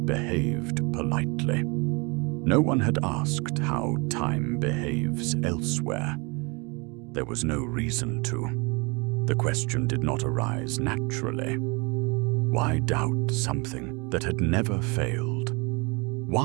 behaved politely. No one had asked how time behaves elsewhere. There was no reason to. The question did not arise naturally. Why doubt something that had never failed?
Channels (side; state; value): left; quieter; 29.1 dB